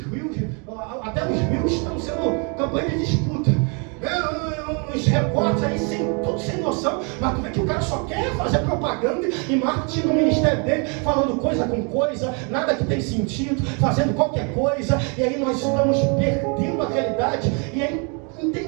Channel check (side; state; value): left; quieter; 35.3 dB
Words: rios, até os rios estão sendo campanha de disputa. Uns repórteres aí tudo sem noção, mas tu vê que o cara só quer fazer propaganda e marketing no ministério dele, falando coisa com coisa, nada que tem sentido, fazendo qualquer coisa, e aí nós estamos perdendo a realidade e o